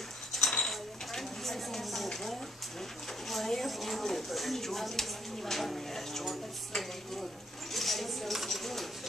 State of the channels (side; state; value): both; normal; correlation 0.69